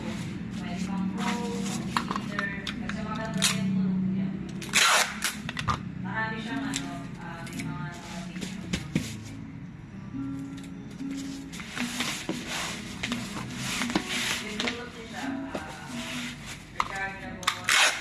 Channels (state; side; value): identical; both; correlation 1.00